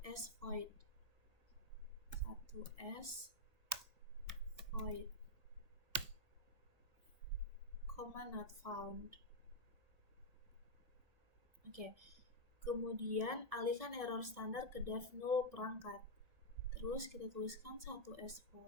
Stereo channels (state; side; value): late; left; 1.7 ms